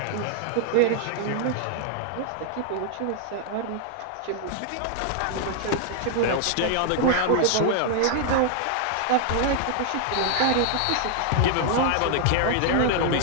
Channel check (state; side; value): different; both; correlation 0.00